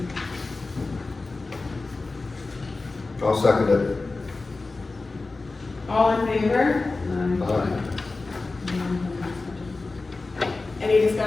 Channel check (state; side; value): quieter; right; 3.6 dB